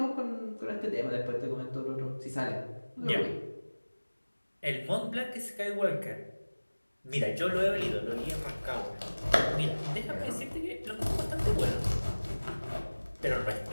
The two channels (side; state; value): both; inverted; correlation -1.00